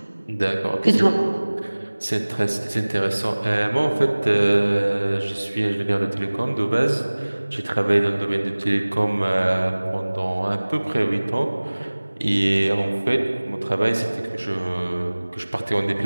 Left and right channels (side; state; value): both; inverted; correlation -1.00